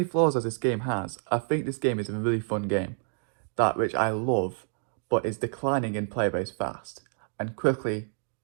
flaws as this game has, I think this game is a really fun game, that which I love, but is declining in player base fast, and quickly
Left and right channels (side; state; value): left; silent; digital silence